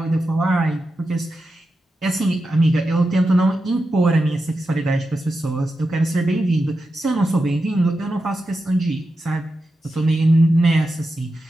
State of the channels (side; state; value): both; normal; correlation 0.89